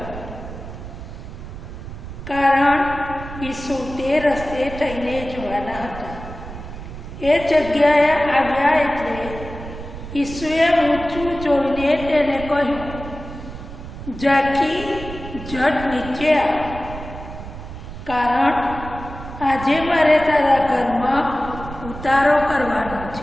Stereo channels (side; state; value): right; noise; rumble, 11 dB below the sound